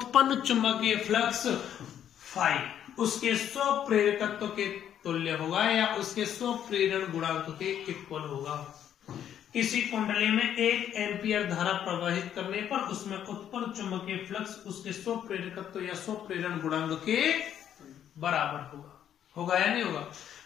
चुंबकीय फ्लक्स फाई उसके स्वप्रेरकत्व के तुल्य होगा या उसके स्वप्रेरण गुणांक के इक्वल होगा। किसी कुंडली में 1 एम्पियर धारा प्रवाहित करने पर उसमें उत्पन्न चुंबकीय फ्लक्स उसके स्वप्रेरकत्व या स्वप्रेरण गुणांक के बराबर होगा। होगा या नहीं होगा?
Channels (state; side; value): quieter; right; 9.9 dB